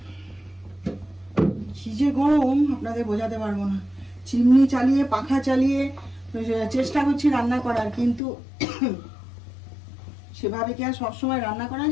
কি যে গরম আপনাদের বোঝাতে পারবো না। চিমনি চালিয়ে পাখা চালিয়ে চেষ্টা করছি রান্না করার, কিন্তু সেভাবে কি আর সবসময় রান্না করা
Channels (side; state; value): right; drops out; at 8.2 s